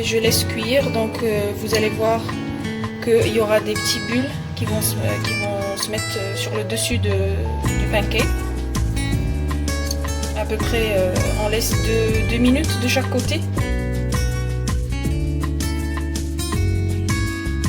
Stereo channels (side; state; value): both; identical; correlation 1.00